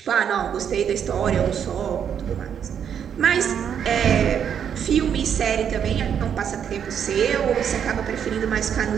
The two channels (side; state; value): left; quieter; 8.3 dB